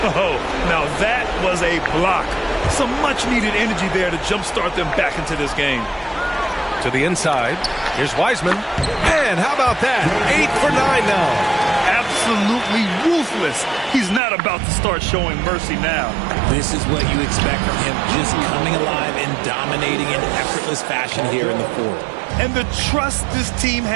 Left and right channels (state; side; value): drops out; left; at 14.2 s